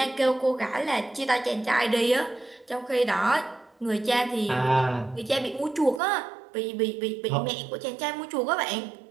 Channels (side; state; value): left; drops out; at 6.0 s